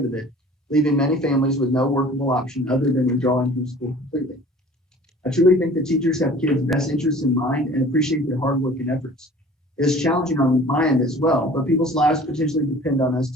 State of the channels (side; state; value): both; normal; correlation 0.46